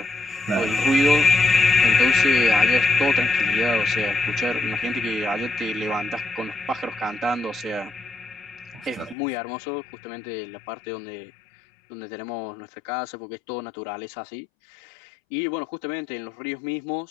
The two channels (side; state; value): right; drops out; at 9.2 s